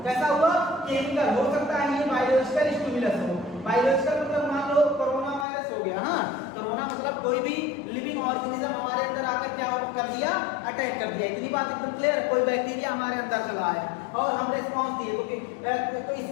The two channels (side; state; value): right; drops out; at 5.5 s